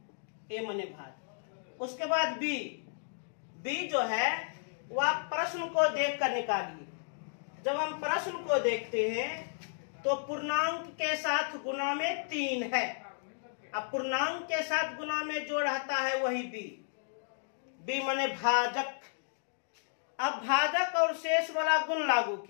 a माने भाग। उसके बाद b जो है वह प्रश्न को देखकर निकालिए। जब हम प्रश्न को देखते हैं तो पूर्णांक के साथ गुणा में 3 है। अब पूर्णांक के साथ गुणा में जो रहता है वही बी माने भाजक। अब भाजक और शेष वाला गुण लागू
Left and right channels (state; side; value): silent; right; digital silence